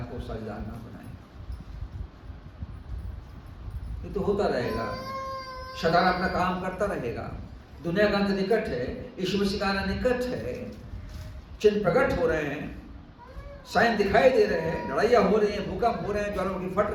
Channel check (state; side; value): identical; both; correlation 1.00